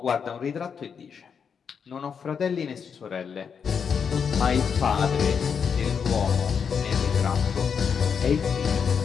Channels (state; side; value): quieter; right; 6.7 dB